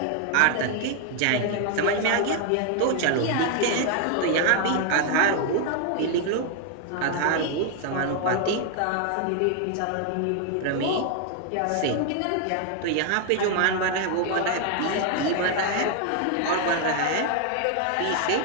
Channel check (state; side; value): different; both; correlation 0.00